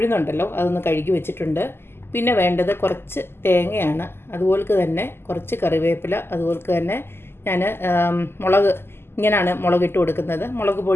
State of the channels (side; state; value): right; late; 0.12 ms